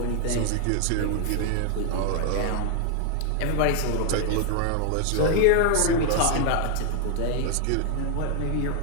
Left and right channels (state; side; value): different; both; correlation 0.00